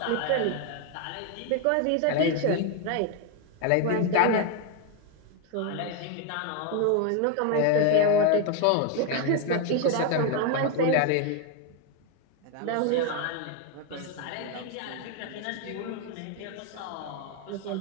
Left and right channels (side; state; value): both; different; correlation 0.01